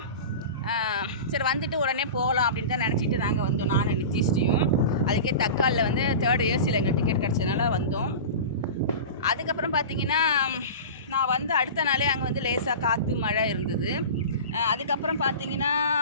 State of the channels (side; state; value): both; inverted; correlation -0.31